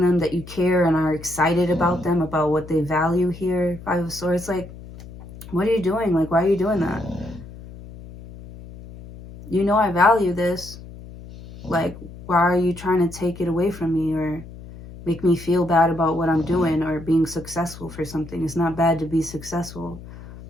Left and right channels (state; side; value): noise; left; hum, 16 dB below the sound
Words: them that you care and are excited about them, about what they value here. Five of Swords, like, what are you doing? Like, why are you doing that? You know I value this. Like, why are you trying to take it away from me or make me feel bad about what I'm doing or being successful for something? It's not bad to be successful.